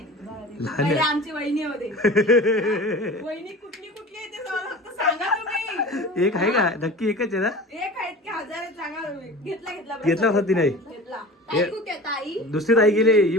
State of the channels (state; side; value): normal; both; correlation 0.37